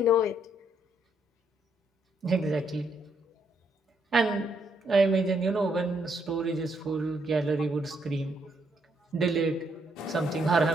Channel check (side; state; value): both; normal; correlation 0.74